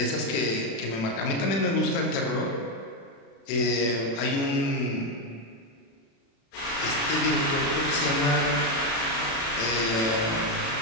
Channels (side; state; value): right; late; 36 ms